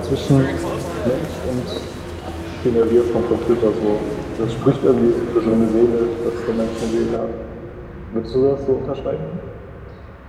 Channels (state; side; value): identical; both; correlation 1.00